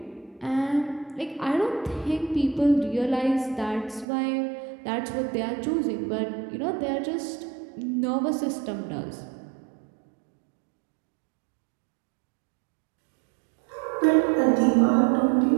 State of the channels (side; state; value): left; drops out; at 4.0 s